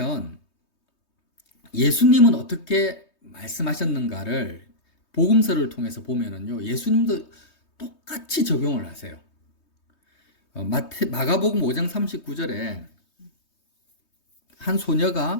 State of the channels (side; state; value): right; late; 3.2 ms